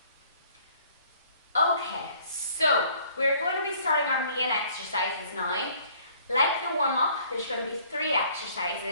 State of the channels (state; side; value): inverted; both; correlation -0.58